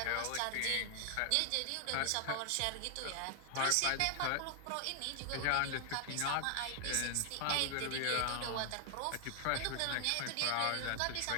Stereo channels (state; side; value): different; both; correlation 0.00